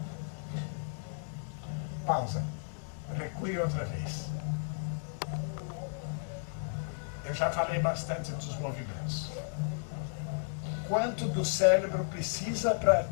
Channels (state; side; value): silent; right; digital silence